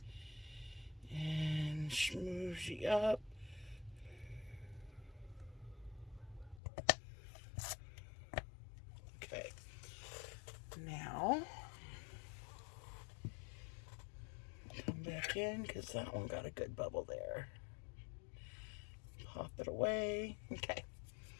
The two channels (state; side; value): drops out; right; at 6.6 s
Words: and smoothie up. Okay, now come back in because that one got a good bubble there. Pop it away. Okay,